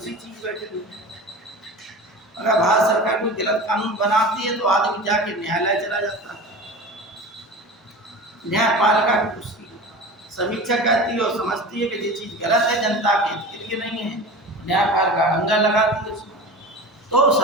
चीज बैठेगी। अगर भारत सरकार कोई गलत कानून बनाती है तो आदमी जाके न्यायालय चला जाता है, न्यायपालिका की उसकी समीक्षा करती है और समझती है कि ये चीज गलत है, जनता के हित के लिए नहीं है, न्यायपालिका अंगा लगाती है उसमें। तो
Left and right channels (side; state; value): both; normal; correlation 0.33